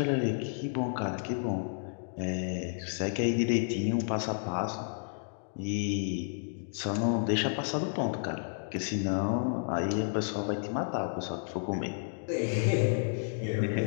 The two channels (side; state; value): right; silent; digital silence